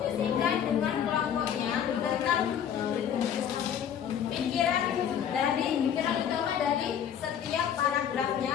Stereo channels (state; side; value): quieter; right; 8.9 dB